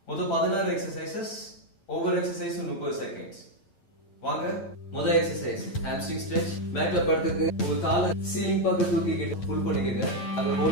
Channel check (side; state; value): right; late; 8.9 ms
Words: மொத்தம் 16 எக்ஸசைசஸ், ஒவ்வொரு எக்ஸசைஸும் 30 செகண்ட்ஸ். வாங்க, முதல் எக்ஸசைஸ் ஹாம்ஸ்ட்ரிங் ஸ்ட்ரெச். மேட்ல படுத்துக்கு உங்க காலை சீலிங் பக்கம் தூக்கிக்கிட்டு புல் பண்ணிக்கங்க. அங்க